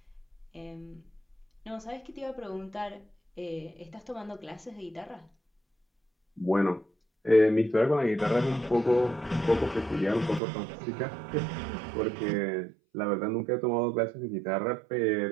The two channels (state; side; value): drops out; left; at 10.4 s